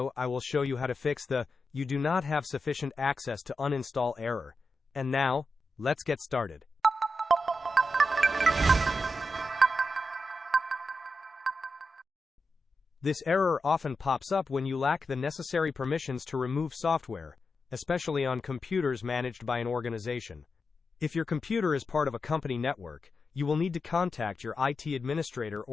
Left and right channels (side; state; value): both; normal; correlation 0.89